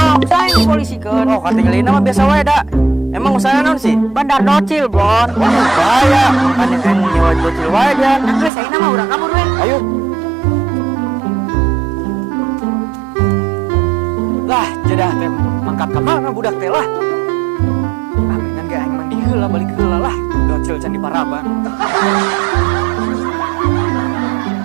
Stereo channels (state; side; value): drops out; left; at 8.5 s